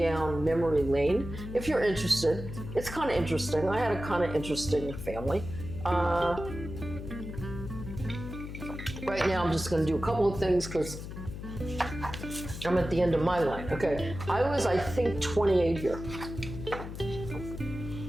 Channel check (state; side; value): noise; left; hum, 9 dB below the sound